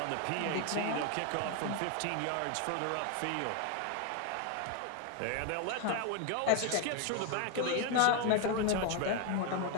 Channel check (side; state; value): both; different; correlation 0.01